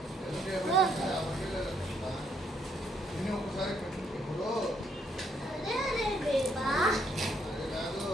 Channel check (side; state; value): both; normal; correlation 0.72